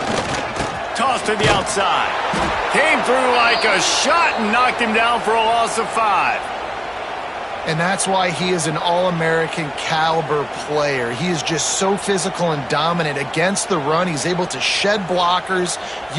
Toss to the outside. Came through like a shot and knocked him down for a loss of 5. And that's why he is an All-American caliber player. He is just so physical and dominant against the run. He's able to shed blockers,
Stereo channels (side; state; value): both; identical; correlation 1.00